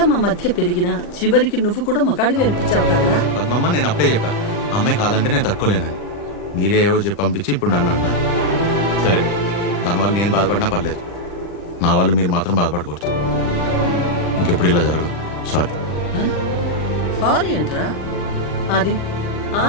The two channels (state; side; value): late; right; 40 ms